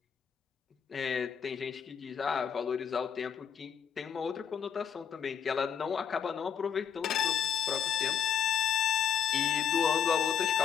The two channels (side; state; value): right; quieter; 7.9 dB